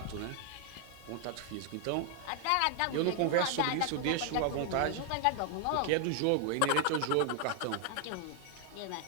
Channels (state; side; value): different; both; correlation 0.00